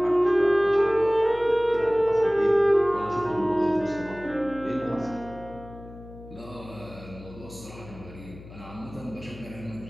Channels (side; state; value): left; noise; hum, 17 dB below the sound